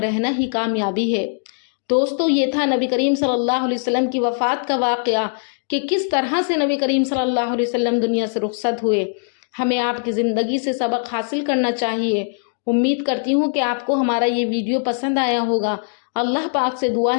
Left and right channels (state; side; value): silent; right; digital silence